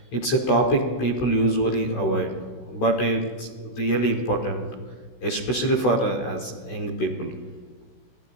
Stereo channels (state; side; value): late; right; 16 ms